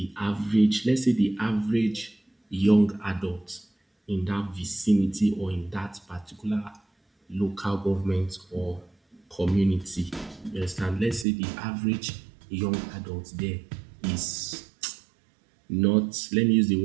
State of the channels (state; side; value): drops out; left; at 11.2 s